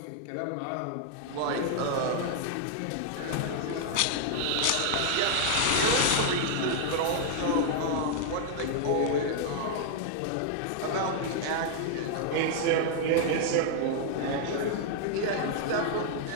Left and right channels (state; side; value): different; both; correlation 0.00